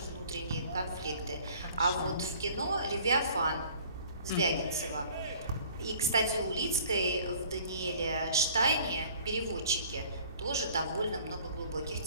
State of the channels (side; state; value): both; inverted; correlation -0.52